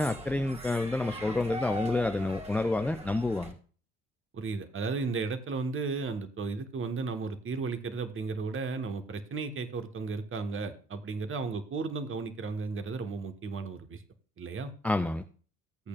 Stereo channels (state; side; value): normal; both; correlation 0.72